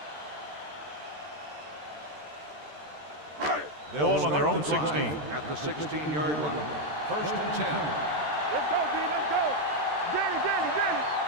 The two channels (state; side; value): late; left; 13 ms